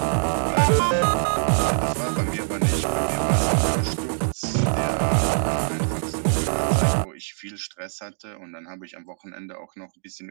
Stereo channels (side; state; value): left; silent; digital silence